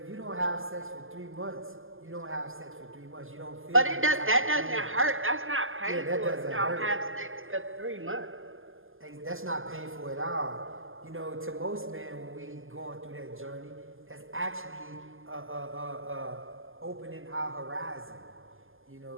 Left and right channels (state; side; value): late; left; 0.59 ms